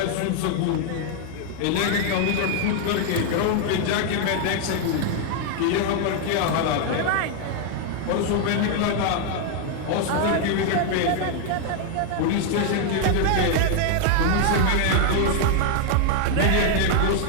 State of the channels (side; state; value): both; different; correlation 0.00